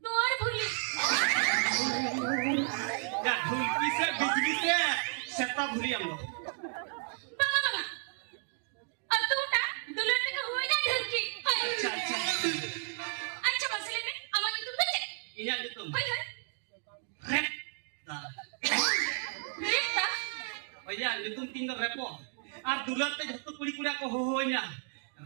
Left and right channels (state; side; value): silent; left; 56 dB below the other